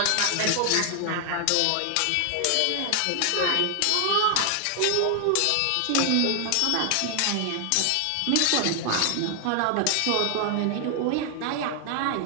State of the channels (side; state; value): both; different; correlation 0.00